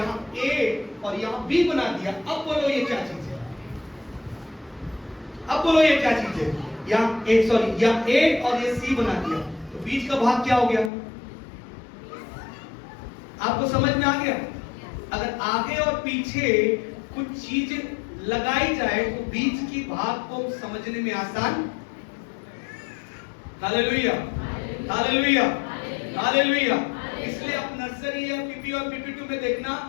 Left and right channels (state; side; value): drops out; right; at 10.9 s